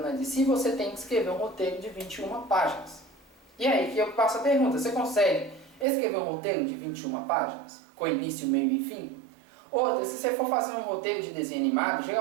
na DC, você tem que escrever um roteiro de 21 páginas. E aí que eu faço a pergunta, você consegue escrever um roteiro de 21 páginas? Com início, meio e fim? Outra, se você for fazer um roteiro de desenho animado,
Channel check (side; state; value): left; drops out; at 5.9 s